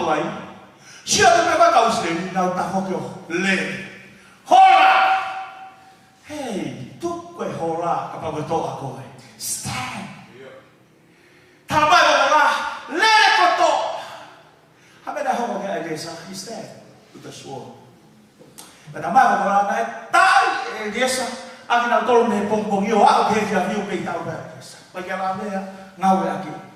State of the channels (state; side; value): identical; both; correlation 1.00